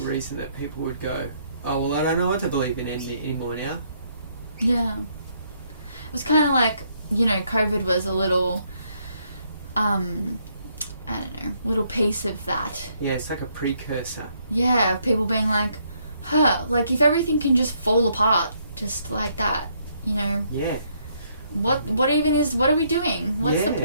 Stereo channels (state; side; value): inverted; both; correlation -0.71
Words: reason that people would go, oh, well, I don't know what to believe in anymore now. Yeah. It was kind of like, COVID was a little, little piece of that. Yeah, it's like a precursor. Yeah, of people being like, like if everything can just fall apart just like that, Yeah. What are we doing? What's the